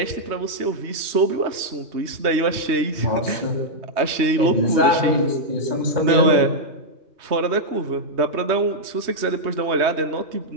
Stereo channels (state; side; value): late; left; 3.2 ms